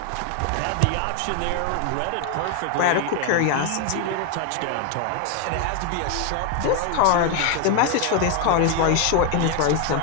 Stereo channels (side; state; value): both; different; correlation 0.01